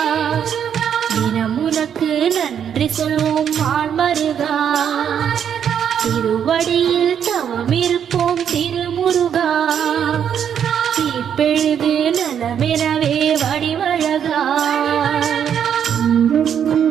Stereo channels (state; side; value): quieter; left; 8.5 dB